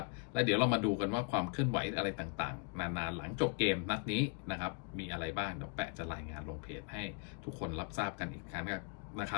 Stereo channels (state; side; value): quieter; right; 35.1 dB